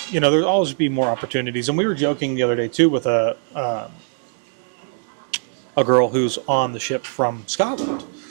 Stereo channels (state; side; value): silent; left; digital silence